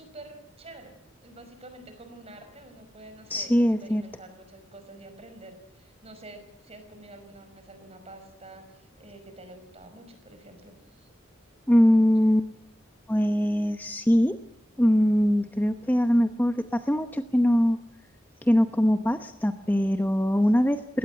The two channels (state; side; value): normal; both; correlation 0.97